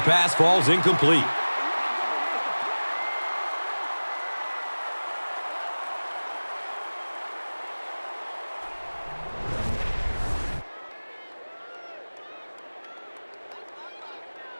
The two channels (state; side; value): inverted; both; correlation -1.00